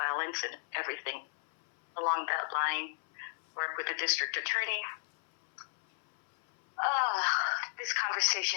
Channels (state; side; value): silent; right; 56 dB below the other